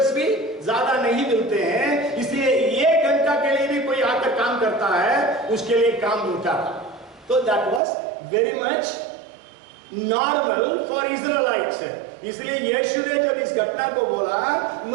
भी ज्यादा नहीं मिलते हैं, इसलिए 1 घंटा के लिए भी कोई आकर काम करता है, उसके लिए काम मिलता था। तो that was very much normal for Israelites. इसलिए यीशु ने जब इस घटना को बोला,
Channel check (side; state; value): left; drops out; at 7.8 s